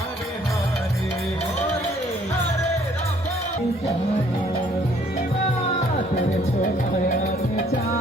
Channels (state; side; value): normal; both; correlation 0.62